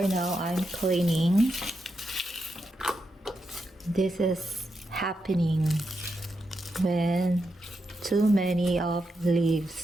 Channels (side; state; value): both; normal; correlation 0.85